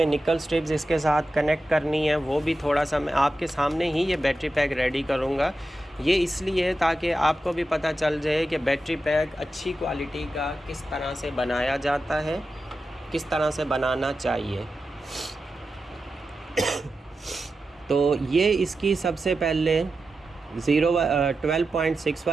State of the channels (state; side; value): normal; both; correlation 0.91